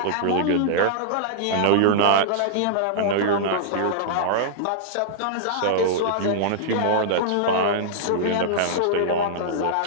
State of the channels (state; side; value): different; both; correlation -0.02